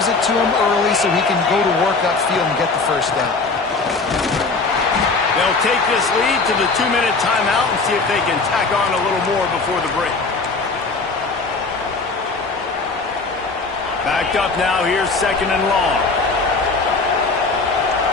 it to him early so he can go to work upfield and get the 1st down. They'll take this lead to the 2-minute timeout and see if they can tack on a little more before the break. Backed up now. Here's 2nd and long.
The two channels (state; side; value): quieter; right; 4.0 dB